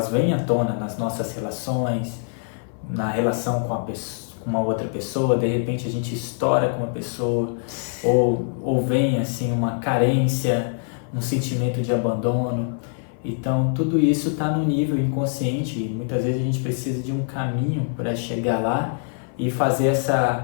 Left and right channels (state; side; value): silent; right; 57 dB below the other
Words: vêm à tona nas nossas relações, na relação com uma outra pessoa, de repente a gente estoura com uma pessoa, ou vem assim uma carência, um sentimento de abandono. Então tudo isso está no nível inconsciente e muitas vezes a gente precisa de um caminho para chegar lá e fazer